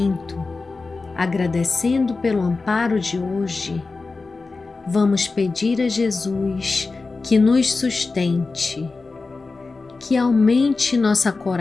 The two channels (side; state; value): right; quieter; 3.9 dB